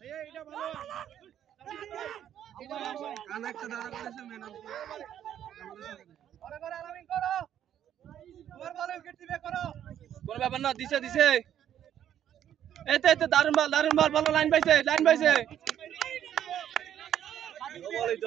কোন ব্যাপার না দিছে দিছে এতে এতে দারুন বল ভালো লাইন পাইছে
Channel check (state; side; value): quieter; left; 10.4 dB